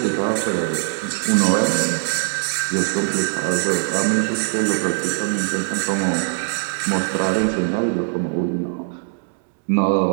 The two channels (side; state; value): left; silent; 65 dB below the other